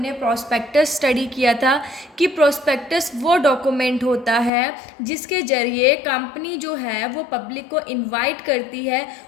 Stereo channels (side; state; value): right; drops out; at 4.5 s